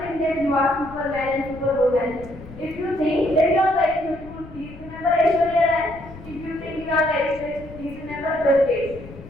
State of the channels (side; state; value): left; noise; rumble, 16 dB below the sound